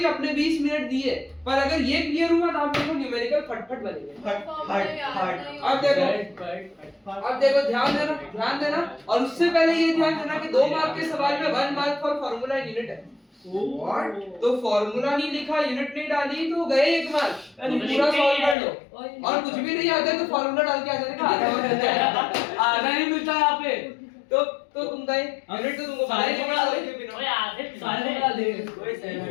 अपने 20 मिनट दिए, पर अगर ये क्लियर हुआ ना आप देखो न्यूमेरिकल फटफट बनेंगे। अब देखो ध्यान देना और उससे पहले ये ध्यान देना कि 2 मार्क के सवाल में 1 mark for formula in unit है। व्हाट? तो फॉर्मूला नहीं लिखा, यूनिट नहीं डाली तो गए 1 मार्क। पूरा सॉल्व कर लो और कुछ भी नहीं आता है तो फॉर्मूला डाल के आ जाने का आधा नहीं मिलता यहाँ पे। तो तुम गए यूनिट, तो तुमको सारे बनाए डाल के बिना। ओए आधे सारे डाल दे।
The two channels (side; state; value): right; drops out; at 18.6 s